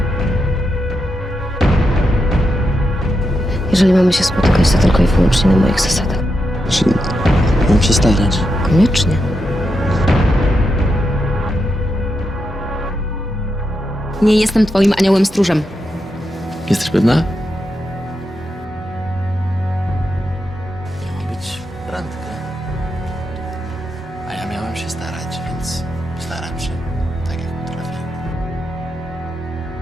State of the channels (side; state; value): both; normal; correlation 0.85